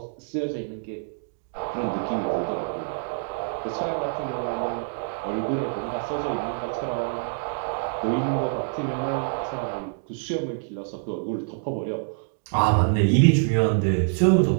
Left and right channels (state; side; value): silent; left; 61 dB below the other